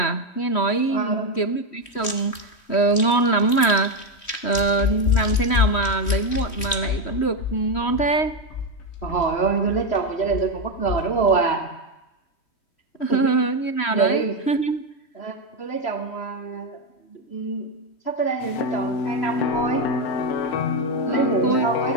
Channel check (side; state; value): right; late; 3.2 ms